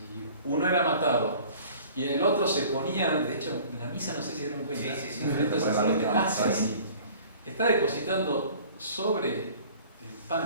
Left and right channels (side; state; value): both; inverted; correlation -0.48